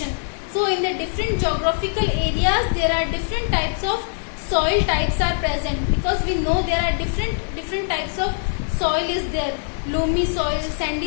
So in the different geographical areas there are different types of soil types are present, because we know there are different types of soil is there. Loamy soil,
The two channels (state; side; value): silent; right; digital silence